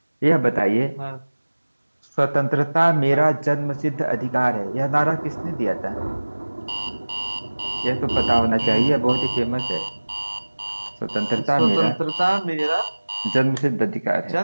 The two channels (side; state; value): both; inverted; correlation -1.00